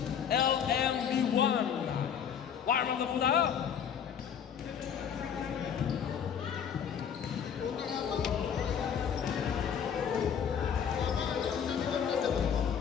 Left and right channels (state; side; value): quieter; right; 8.0 dB